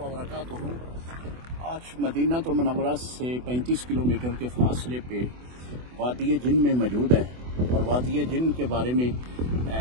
बरकातुहू। आज मदीना तो मुनव्वरा से 35 किलोमीटर के फासले पे वादी जिन में मौजूद है, और वादी जिन के बारे में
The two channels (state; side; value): late; left; 24 ms